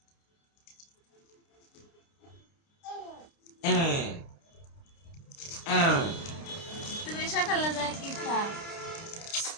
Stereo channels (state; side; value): late; right; 29 ms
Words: হ্যাঁ, হ্যাঁ। তুমি সকালে যায় কি খাও?